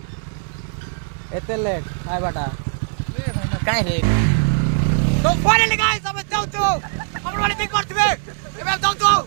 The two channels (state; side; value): silent; left; 61 dB below the other